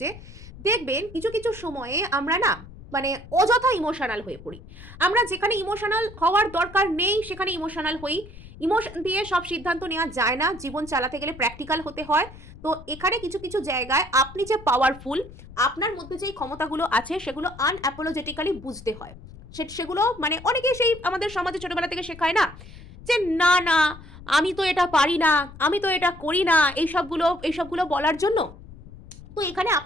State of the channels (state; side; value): noise; left; rumble, 17 dB below the sound